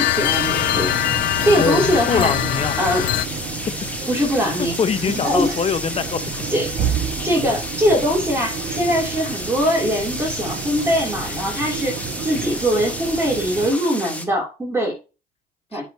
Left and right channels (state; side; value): normal; both; correlation 0.48